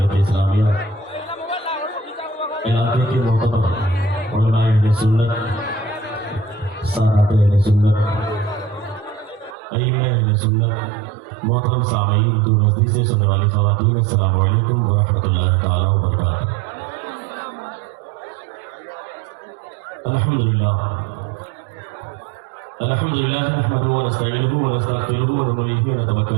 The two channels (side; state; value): left; drops out; at 9.6 s